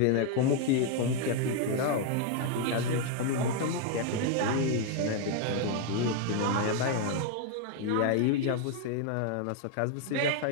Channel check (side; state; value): both; different; correlation 0.00